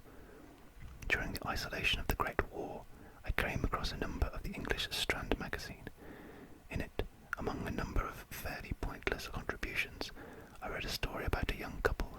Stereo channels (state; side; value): identical; both; correlation 1.00